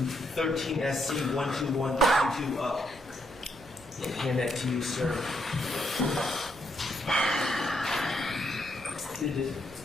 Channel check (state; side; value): normal; both; correlation 0.77